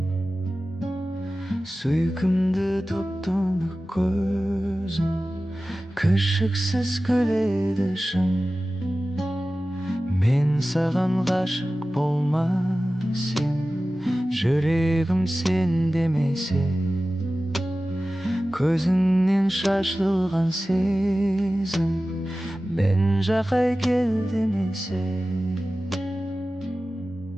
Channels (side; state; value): both; normal; correlation 0.95